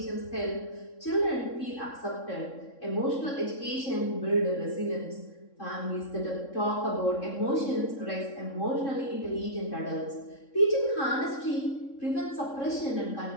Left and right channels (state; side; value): late; right; 3.7 ms